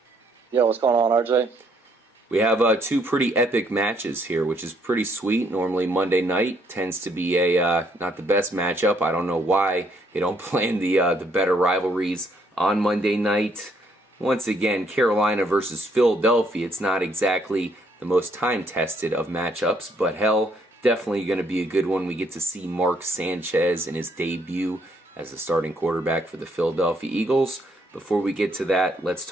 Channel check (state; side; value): normal; both; correlation 0.69